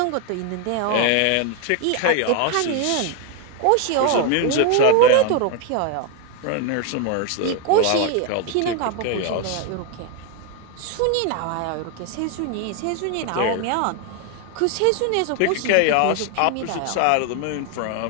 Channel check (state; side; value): different; both; correlation 0.01